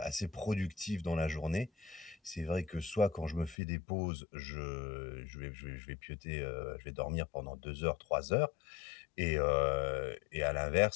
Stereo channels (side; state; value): right; drops out; at 3.6 s